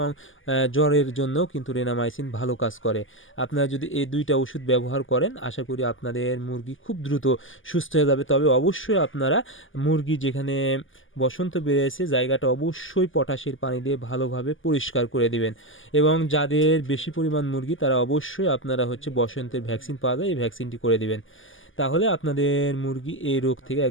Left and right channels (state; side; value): late; right; 0.58 ms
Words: জ্বরের জন্য কিন্তু রেনামাইসিন ভালো কাজ করে। আপনারা যদি এই দুইটা ওষুধ ব্যবহার করেন আশা করি আপনাদের মুরগি খুব দ্রুত সুস্থ হয়ে যাবে। তবে অবশ্যই আপনারা মুরগি যেখানে বসন্ত বেড়েছে জায়গাটা অবশ্যই পটাশের পানি দিয়ে ভালোভাবে পরিষ্কার করে দিবেন। এবং যাদের বেশি পরিমাণ মুরগি তারা অবশ্যই আপনারা বসন্তের ভ্যাকসিন পাওয়া যায়, এই ভ্যাকসিনটি করে দিবেন। তাহলে আপনাদের মুরগি এই রোগ থেকে